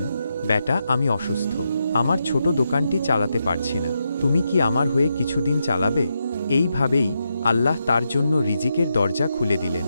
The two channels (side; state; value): both; inverted; correlation -0.84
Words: বেটা, আমি অসুস্থ, আমার ছোট দোকানটি চালাতে পারছি না, তুমি কি আমার হয়ে কিছুদিন চালাবে? এইভাবেই আল্লাহ তার জন্য রিজিকের দরজা খুলে দিলেন,